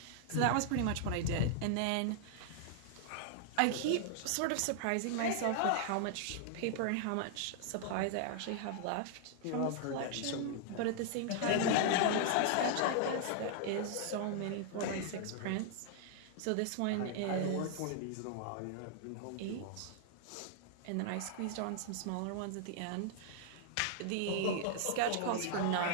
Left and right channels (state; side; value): different; both; correlation 0.00